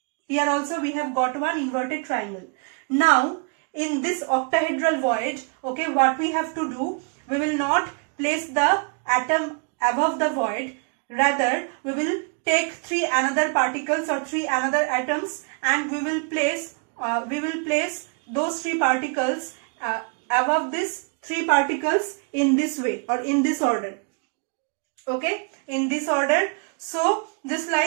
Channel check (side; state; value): left; quieter; 38.3 dB